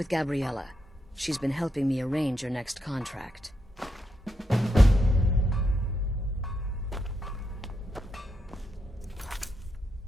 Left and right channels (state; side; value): normal; both; correlation 0.82